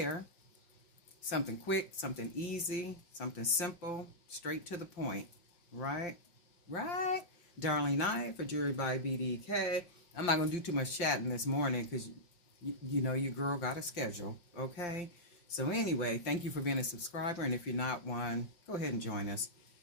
Something quick, something easy, something simple, straight to the point. Right? Right? Darlene Knight for Jewelry by BDK. I'm not going to do too much chatting this morning because, your girl got a schedule. Okay? So anyway, thank you for being a subscriber. And if you're not one, go ahead and join us.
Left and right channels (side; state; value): right; late; 5.8 ms